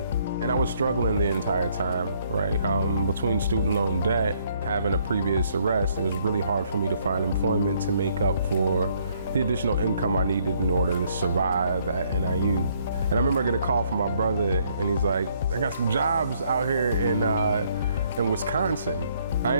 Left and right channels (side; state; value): both; inverted; correlation -0.67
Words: And I was struggling the entire time, right? Between student loan debt, having a previous arrest, it was really hard for me to find employment to make up for the additional income I needed in order to survive at NIU. And I remember I get a call from my brother, and he's like, I got some jobs out here in Wisconsin. I